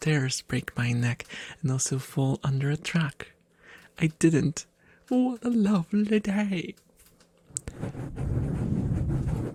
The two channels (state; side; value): identical; both; correlation 1.00